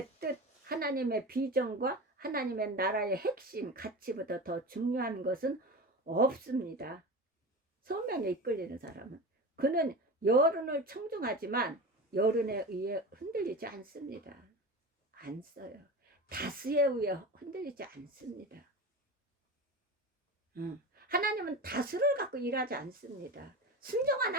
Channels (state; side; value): normal; both; correlation 0.28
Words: 뜻, 하나님의 비전과 하나님의 나라의 핵심, 가치보다 더 중요한 것은 없습니다. 소명에 이끌리는 사람은. 그는 여론을 청중하지만 여론에 의해 흔들리지 않습니다. 안 써요. 다수에 의해 흔들리지 않습니다. 하나님은 다수를 갖고 일하지 않습니다.